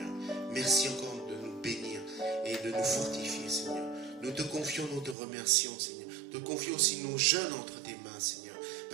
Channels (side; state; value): left; drops out; at 5.2 s